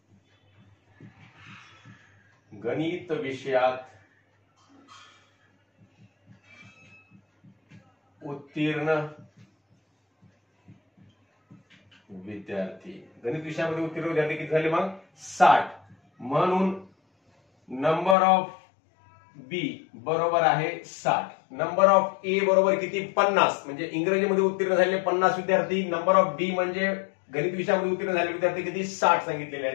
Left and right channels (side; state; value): right; drops out; at 18.2 s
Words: उत्तीर्ण विद्यार्थी. गणित विषयामध्ये उत्तीर्ण विद्यार्थी किती झाले मग 60. म्हणून नंबर ऑफ बी बरोबर आहे 60. नंबर ऑफ ए बरोबर किती 50 म्हणजे इंग्रजीमध्ये उत्तीर्ण झालेले 50 विद्यार्थी. नंबर ऑफ बी म्हणजे गणित विषयामध्ये उत्तीर्ण झालेले विद्यार्थी किती 60 सांगितलेले